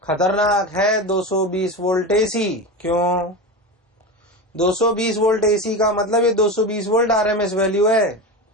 खतरनाक है 220 वोल्ट एसी। क्यों? 220 वोल्ट एसी का मतलब ये 220 वोल्ट आरएमएस वैल्यू है।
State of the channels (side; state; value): both; normal; correlation 0.23